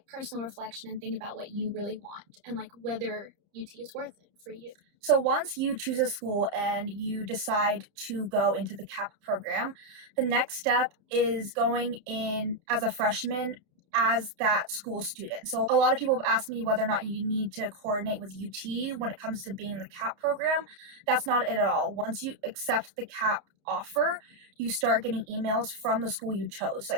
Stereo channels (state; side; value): late; left; 30 ms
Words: personal reflection and think about what you really want and like whether UT is worth it for you. So once you choose a school and you decide to go into the CAP program, the next step is going in as a freshman as that school student. So a lot of people have asked me whether or not you need to coordinate with UT when it comes to being in the CAP program. That's not it at all. Once you accept the CAP offer, you start getting emails from the school you chose.